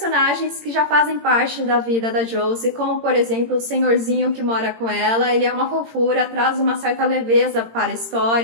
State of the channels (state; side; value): late; left; 18 ms